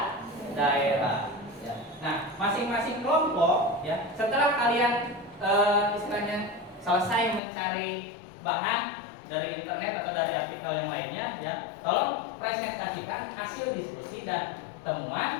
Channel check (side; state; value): right; drops out; at 7.4 s